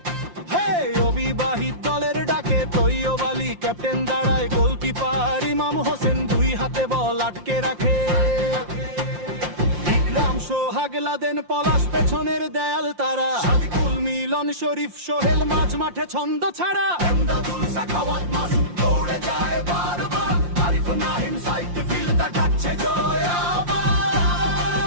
হে অবিবাহিত দলের ডাকে তৈয়ব আলী ক্যাপ্টেন দাঁড়ায়, গোলকিপার ইমাম হোসেন 2 হাতে বল আটকে রাখে। ইকরাম সোহাগ লাদেন পলাশ পেছনের দেয়াল তারা, সাদিকুল মিলন শরীফ সোহেল মাঝ মাঠে ছন্দ ছাড়া। এমদাদুল সাখাওয়াত মাসুদ দৌড়ে যায় বারবার, আরিফ নাহিম সাইড ফিল্ডার ডাকছে জয় আবার।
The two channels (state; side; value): late; left; 5.7 ms